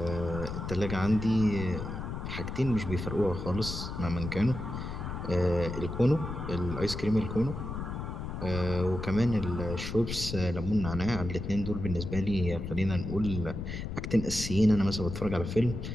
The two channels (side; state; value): left; noise; rumble, 6 dB below the sound